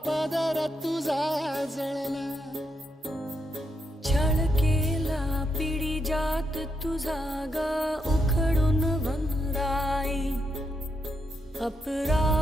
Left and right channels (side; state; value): both; normal; correlation 0.80